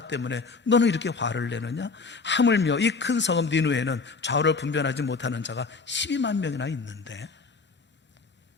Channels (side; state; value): right; quieter; 4.5 dB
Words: 때문에 너는 이렇게 화를 내느냐? 하물며 이 큰 성읍 니느웨에는 좌우를 분별하지 못하는 자가 12만 명이나 있는데.